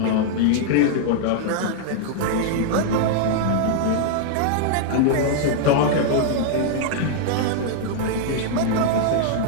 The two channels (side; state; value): both; different; correlation -0.01